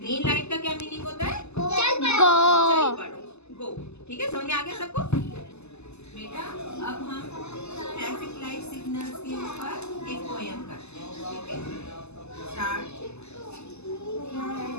लाइट का क्या मीनिंग होता है? चल पड़ो, गो। ठीक है, समझ में आ गया सबको? बेटा, अब हम ट्रैफिक लाइट सिग्नल्स के ऊपर एक पोयम करते हैं। ठीक है, स्टार्ट।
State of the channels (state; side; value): late; right; 0.80 ms